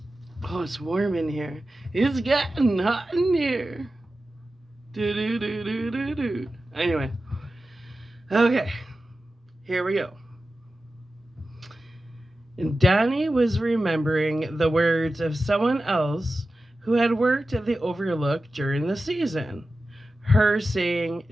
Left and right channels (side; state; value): both; normal; correlation 0.94